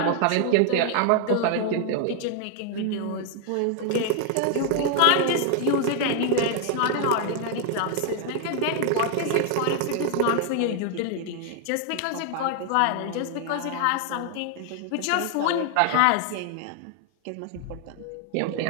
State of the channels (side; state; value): both; different; correlation 0.00